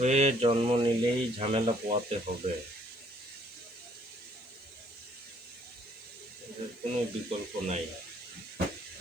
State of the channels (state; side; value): noise; left; hiss, 29 dB below the sound